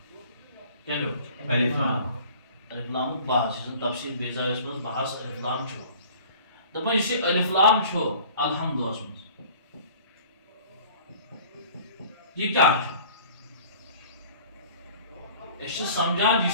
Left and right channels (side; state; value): both; inverted; correlation -0.48